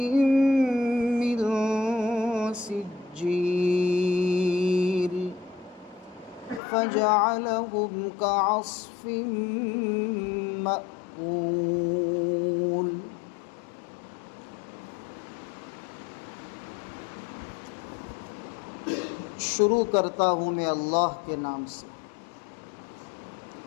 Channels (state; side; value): drops out; right; at 6.6 s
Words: من سجيل فجعلهم كعصف مأكول۔ شروع کرتا ہوں میں اللہ کے نام سے